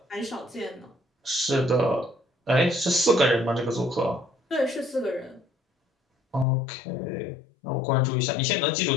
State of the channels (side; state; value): right; drops out; at 6.5 s